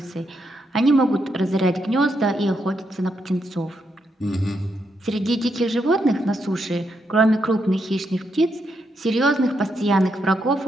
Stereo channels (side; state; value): both; normal; correlation 0.80